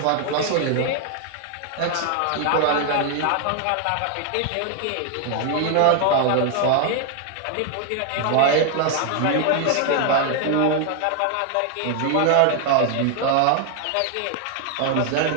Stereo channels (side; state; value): both; different; correlation 0.00